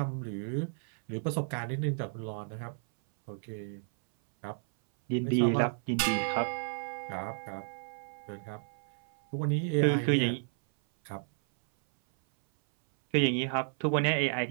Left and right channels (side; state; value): left; silent; 56 dB below the other